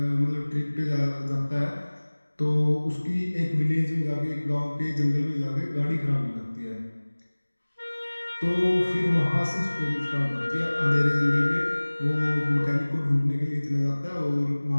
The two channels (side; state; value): both; inverted; correlation -1.00